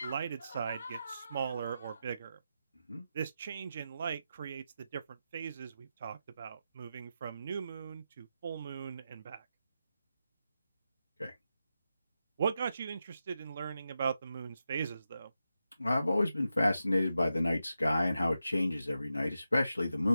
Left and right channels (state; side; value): inverted; both; correlation -0.88